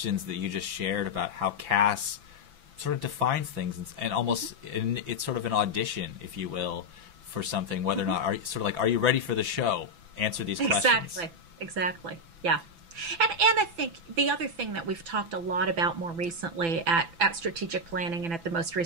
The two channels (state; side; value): late; left; 6.0 ms